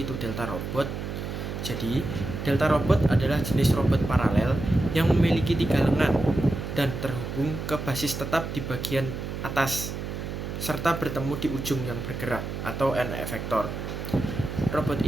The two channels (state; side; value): noise; right; hum, 6 dB below the sound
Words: itu Delta Robot. Jadi, Delta Robot adalah jenis robot paralel yang memiliki 3 lengan dan terhubung ke basis tetap di bagian atas serta bertemu di ujung yang bergerak atau end effector. Robot